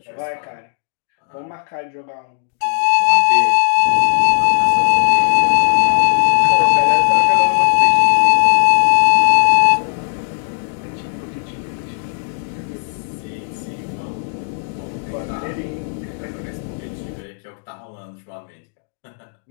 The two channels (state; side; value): silent; right; digital silence